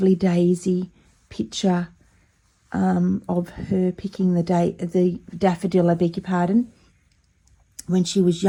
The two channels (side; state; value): both; identical; correlation 1.00